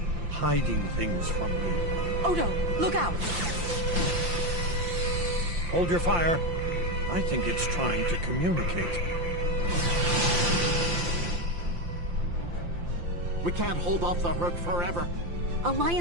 hiding things from me. Odo, look out! Hold your fire. I think it's trying to communicate. We can't hold off the Herc forever.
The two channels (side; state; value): left; late; 5.8 ms